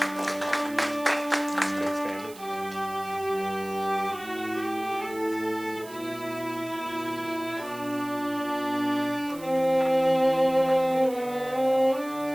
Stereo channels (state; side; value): noise; right; hiss, 19 dB below the sound